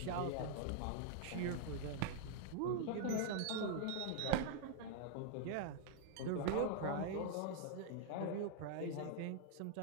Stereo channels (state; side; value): different; both; correlation -0.01